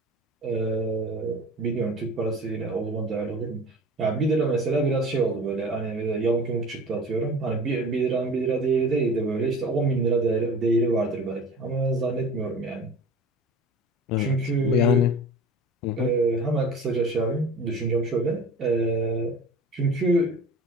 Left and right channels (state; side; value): normal; both; correlation 0.39